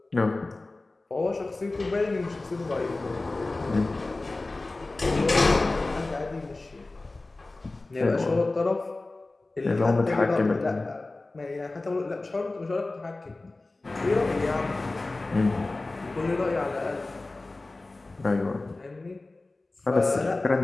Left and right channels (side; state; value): right; quieter; 3.2 dB